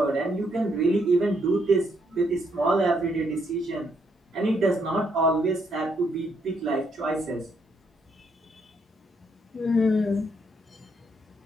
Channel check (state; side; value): normal; both; correlation 0.73